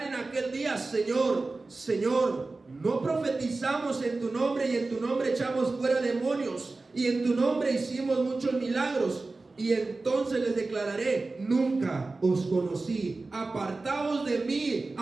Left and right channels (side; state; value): left; quieter; 3.5 dB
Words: en aquel día: Señor, Señor, no profetizamos en tu nombre, y en tu nombre echamos fuera demonios, y en tu nombre hicimos muchos milagros. Y entonces les declararé: nunca os conocí, apartaos de mí,